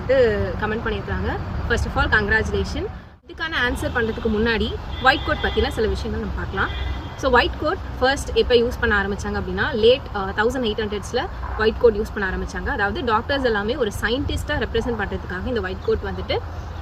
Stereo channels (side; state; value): both; identical; correlation 1.00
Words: கமெண்ட் பண்ணியிருக்காங்க. First of all congratulation. இதுக்கான ஆன்சர் பண்ணுறதுக்கு முன்னாடி ஒயிட் கோட் பற்றின சில விஷயங்கள் நம்ம பார்க்கலாம். ஸோ ஒயிட் கோட் ஃபர்ஸ்ட் எப்போ யூஸ் பண்ண ஆரம்பித்தாங்க அப்படின்னா late 1800s white code use பண்ண ஆரம்பித்தாங்க. அதாவது டாக்டர்ஸ் எல்லாமே ஒரு சயின்டிஸ்ட்டாக ரெப்ரசென்ட் பண்ணுறதுக்காக இந்த ஒயிட் கோட் வந்துட்டு